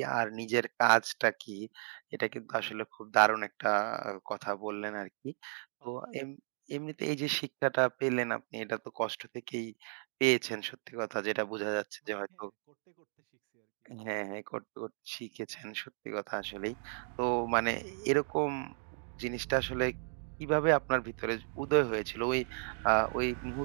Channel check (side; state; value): left; silent; 55 dB below the other